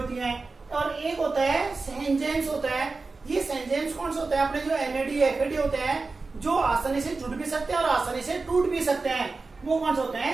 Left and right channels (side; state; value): left; quieter; 3.9 dB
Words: हैं। और एक होता है एंजाइम्स होता है। ये एंजाइम्स कौन से होते हैं? अपने जो एनएडी एफएडी होते हैं, जो आसानी से जुड़ भी सकते हैं और आसानी से टूट भी सकते हैं, वो कौन से होते